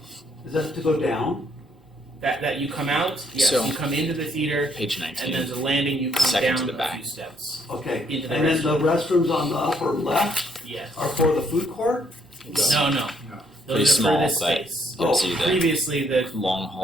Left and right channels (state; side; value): normal; both; correlation 0.68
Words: is that to go down? that you come out. Yes, So- you come into the theater, Page and 19. there's a landing. You come Second down to the a back. few steps. Okay, Into the and then the restrooms on the upper left Yes. are for the food court? No. No. Those Pretty are small, for this but space. you'll see the Previously, the long